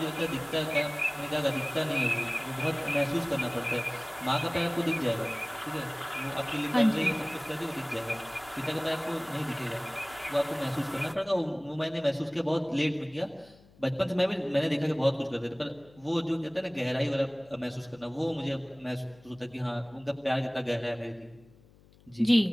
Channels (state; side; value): noise; left; hum, 27 dB below the sound